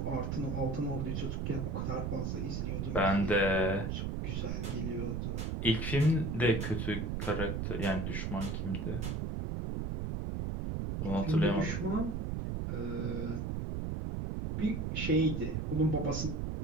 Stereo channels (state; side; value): noise; right; rumble, 2 dB below the sound